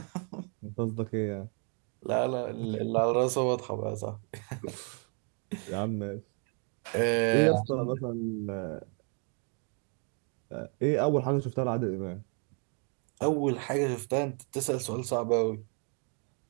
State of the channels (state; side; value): quieter; left; 38.9 dB